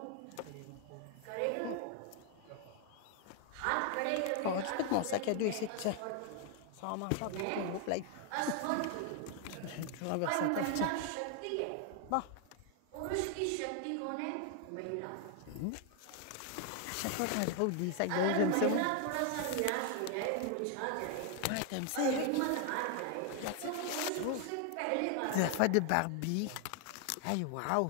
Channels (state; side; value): different; both; correlation 0.00